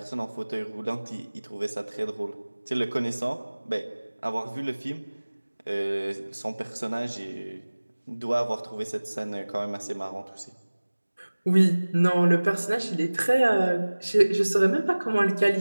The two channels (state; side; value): inverted; both; correlation -1.00